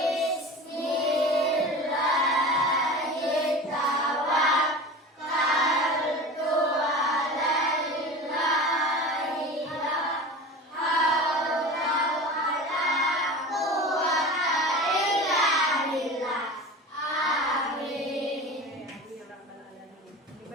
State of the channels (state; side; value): normal; both; correlation 0.33